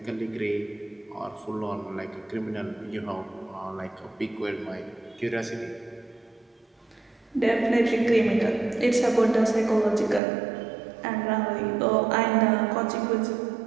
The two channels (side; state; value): left; drops out; at 10.2 s